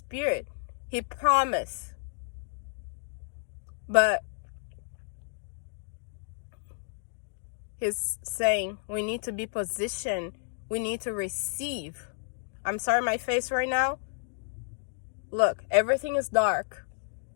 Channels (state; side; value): silent; right; digital silence